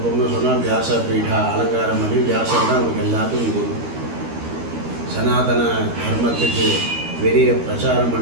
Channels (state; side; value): late; left; 13 ms